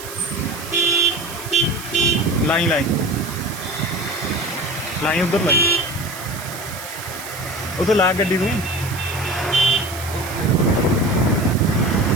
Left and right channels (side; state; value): right; noise; hiss, 12 dB below the sound